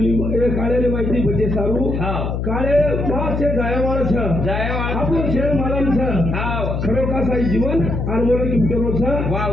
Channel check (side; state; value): left; noise; hum, 2 dB below the sound